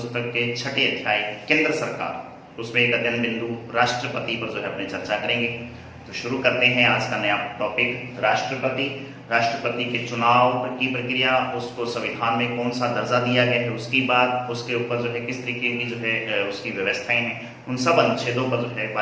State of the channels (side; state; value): both; identical; correlation 1.00